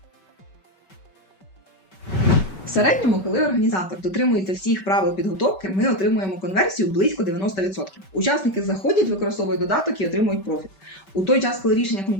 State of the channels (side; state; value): right; late; 5.2 ms